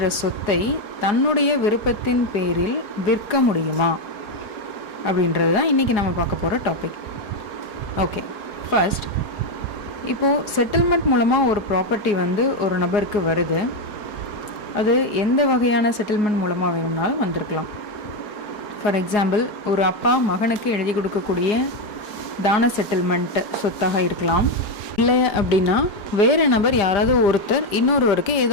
சொத்தை தன்னுடைய விருப்பத்தின் பேரில் விற்க முடியுமா அப்படின்றது தான் இன்றைக்கி நம்ம பார்க்க போகிற டாபிக். ஓகே, ஃபர்ஸ்ட் இப்போது செட்டில்மெண்ட் மூலமாக ஒரு ப்ராப்பர்ட்டி ஒரு நபருக்கு வருது. அது எந்த வகையான செட்டில்மெண்ட் மூலமாக வேணும்னாலும் வந்திருக்கலாம். ஃபார் எக்ஸாம்பிள், ஒரு அப்பா மகனுக்கு எழுதி கொடுக்கக்கூடிய தான செட்டில்மெண்ட் சொத்தாக இருக்கலாம். இல்லை அப்படின்னா வேறு நபர் யாராவது ஒருத்தர் இன்னொருவருக்கு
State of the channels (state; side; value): late; right; 4.8 ms